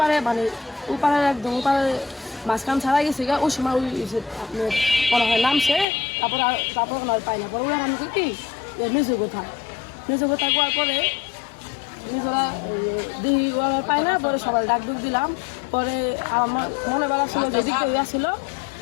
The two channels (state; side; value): drops out; right; at 5.9 s